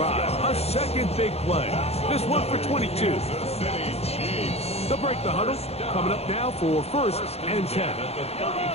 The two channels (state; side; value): late; right; 0.30 ms